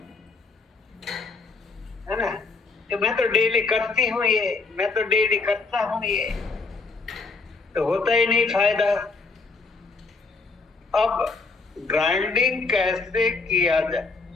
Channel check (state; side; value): quieter; right; 4.0 dB